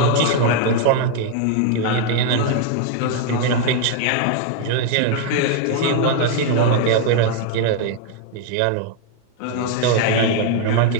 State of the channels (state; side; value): different; both; correlation 0.00